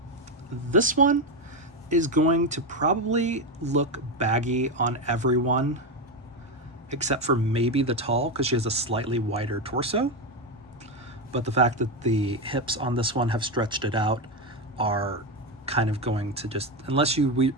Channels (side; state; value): both; normal; correlation 0.11